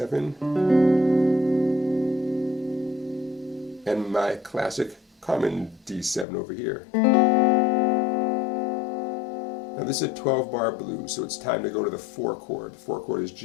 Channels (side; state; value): right; drops out; at 6.2 s